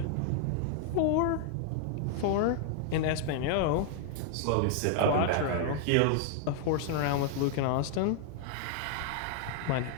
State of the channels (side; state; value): both; different; correlation 0.00